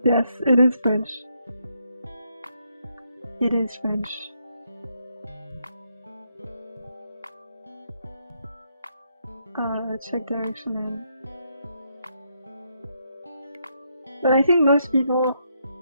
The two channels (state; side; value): inverted; both; correlation -0.77